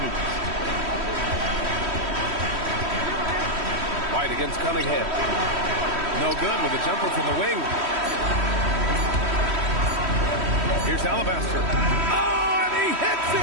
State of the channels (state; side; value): late; left; 3.1 ms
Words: White against Cunningham. No good with a jumper from the wing. Here's Alabaster. Oh, and he hits